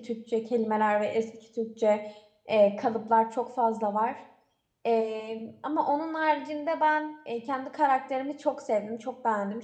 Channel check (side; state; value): both; identical; correlation 1.00